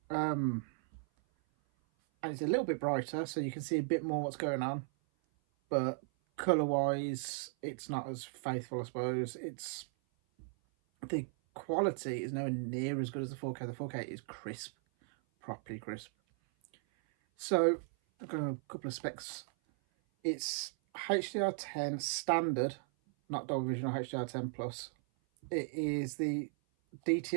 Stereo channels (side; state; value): left; silent; 53 dB below the other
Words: And it's a little bit brighter, so you can see a bit more what's going on. But colour-wise, it's not as faithful, I suppose. It's the quality is nowhere near as good as the 4K. The 4K is crisp, properly crisp. So I've got a couple of specs. It's HDR10 standard, not Dolby Vision or HDR10 Plus. It is the